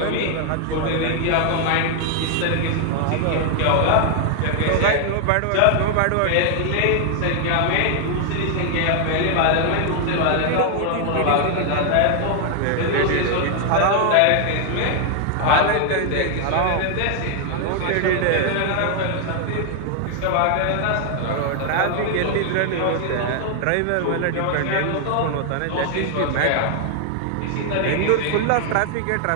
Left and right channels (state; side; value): different; both; correlation 0.00